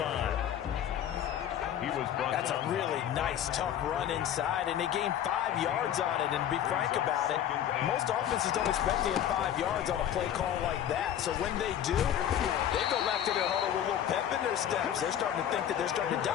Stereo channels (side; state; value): right; quieter; 10.4 dB